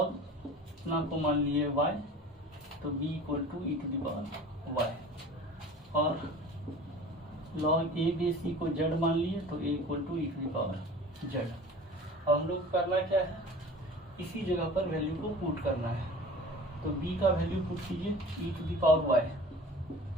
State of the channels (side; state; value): both; normal; correlation 0.41